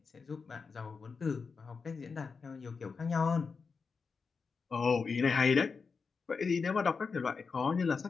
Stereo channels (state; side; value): quieter; right; 5.1 dB